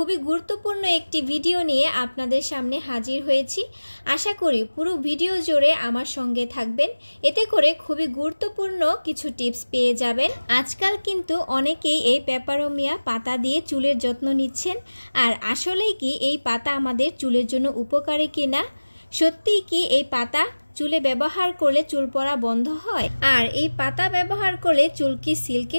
গুরুত্বপূর্ণ একটি ভিডিও নিয়ে আপনাদের সামনে হাজির হয়েছি। আশা করি পুরো ভিডিও জুড়ে আমার সঙ্গে থাকবেন, এতে করে খুবই গুরুত্বপূর্ণ কিছু টিপস পেয়ে যাবেন। আজকাল কিন্তু অনেকেই এই পেপারোমিয়া পাতা দিয়ে চুলের যত্ন নিচ্ছেন। আর আসলেই কি এই পাতা আমাদের চুলের জন্য উপকারী কিনা? সত্যিই কি এই পাতা চুলে ব্যবহার করলে চুল পড়া বন্ধ হয়? আর এই পাতা ব্যবহার করলে চুল কি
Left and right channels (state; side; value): inverted; both; correlation -1.00